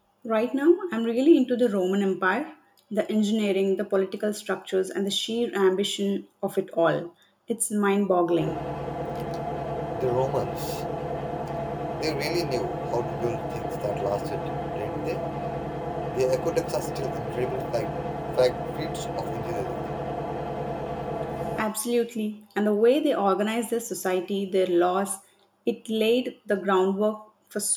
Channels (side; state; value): both; identical; correlation 1.00